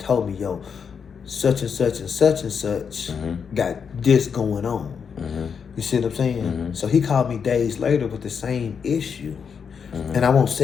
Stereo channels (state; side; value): quieter; right; 6.6 dB